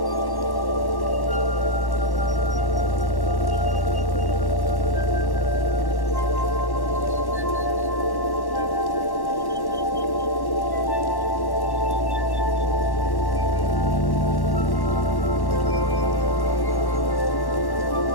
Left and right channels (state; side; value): late; right; 1.1 ms